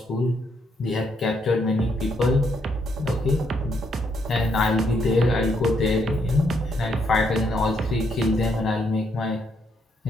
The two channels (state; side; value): normal; both; correlation 0.75